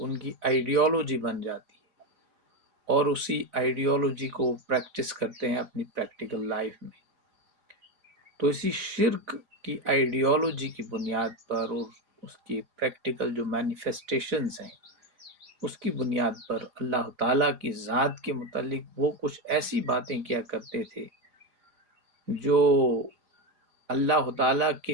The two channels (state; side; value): late; left; 4.9 ms